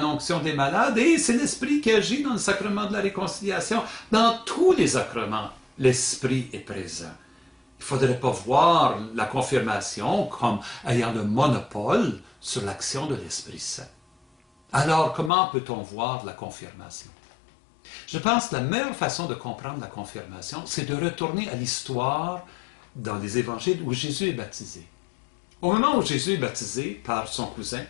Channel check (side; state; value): right; drops out; at 15.3 s